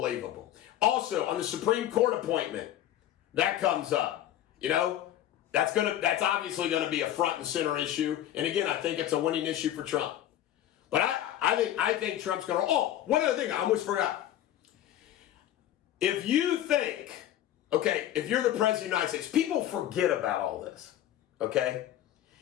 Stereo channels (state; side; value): quieter; right; 12.3 dB